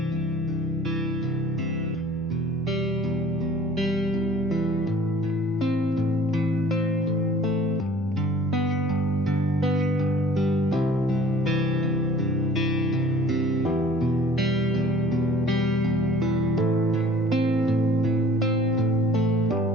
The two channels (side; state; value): both; normal; correlation 0.50